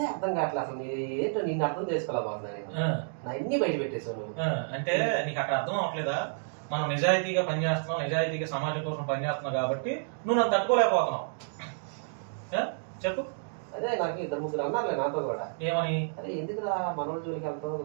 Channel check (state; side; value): silent; left; digital silence